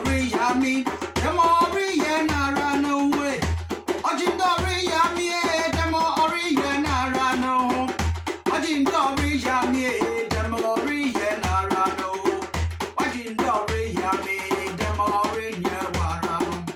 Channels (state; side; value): identical; both; correlation 1.00